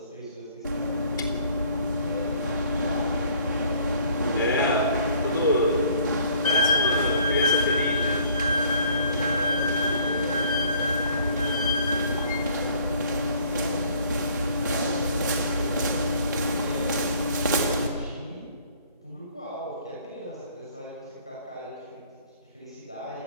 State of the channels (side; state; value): both; inverted; correlation -0.57